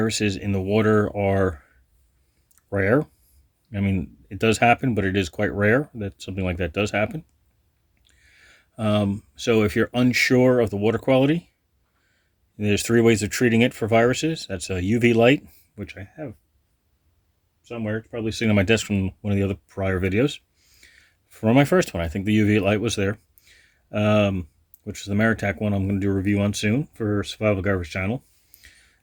in the water are rare. I mean, it does happen, but it is quite rare that something like that does happen. So if you're unsure of the water quality, there's 3 ways of treating it for viruses. That's a UV light, which I have somewhere. It's probably sitting on my desk from one of the other prior videos. For my first one, I think the UV light was there, which is the Maratac one I'm going to do a review on soon for Survival Garbage channel.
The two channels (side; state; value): both; identical; correlation 1.00